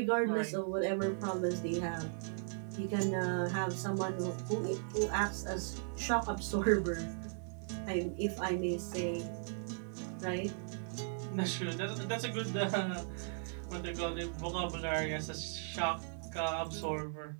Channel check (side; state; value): left; silent; 53 dB below the other